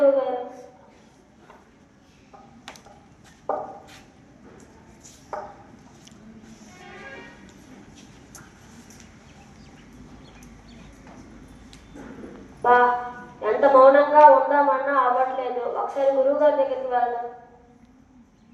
గారు. బా, ఎంత మౌనంగా ఉందామన్నా అవ్వట్లేదు. ఒకసారి గురువు గారి దగ్గరికి వెళ్దాం.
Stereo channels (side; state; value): both; identical; correlation 1.00